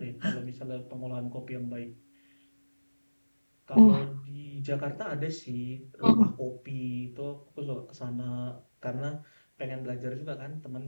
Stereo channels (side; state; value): both; inverted; correlation -1.00